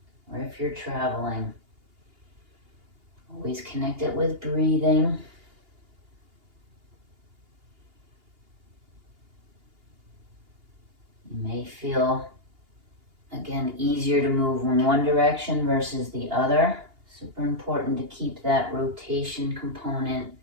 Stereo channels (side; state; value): left; late; 2.8 ms